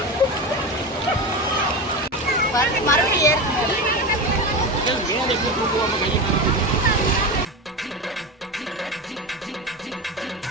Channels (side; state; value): both; normal; correlation 0.21